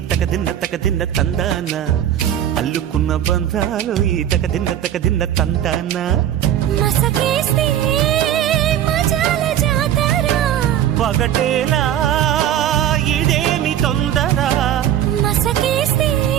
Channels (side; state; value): left; quieter; 10.9 dB